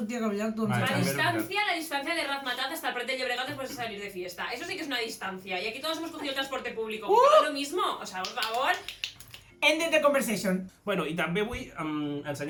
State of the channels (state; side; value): identical; both; correlation 1.00